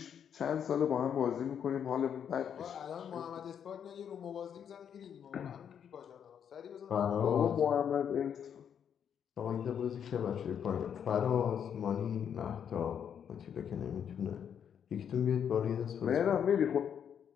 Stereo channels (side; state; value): right; quieter; 8.3 dB